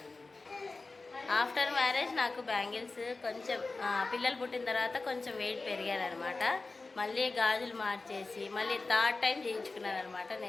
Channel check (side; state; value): right; quieter; 3.6 dB